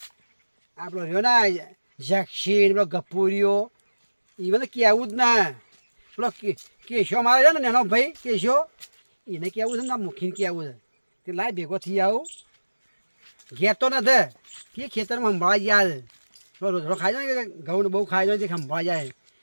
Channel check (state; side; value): inverted; both; correlation -1.00